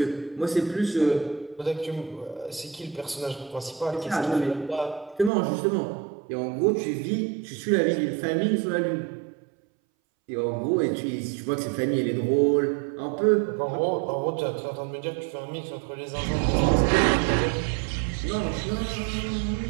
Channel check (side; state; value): left; drops out; at 5.3 s